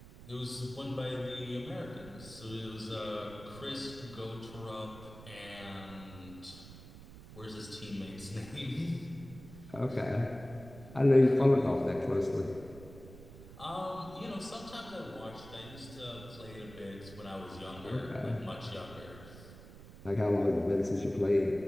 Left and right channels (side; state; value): right; noise; rumble, 16 dB below the sound